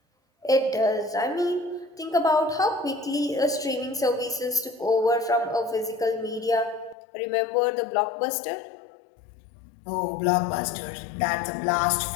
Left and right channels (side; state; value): right; drops out; at 7.0 s